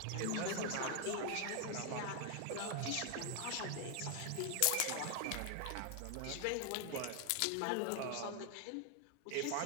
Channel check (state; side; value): different; both; correlation 0.00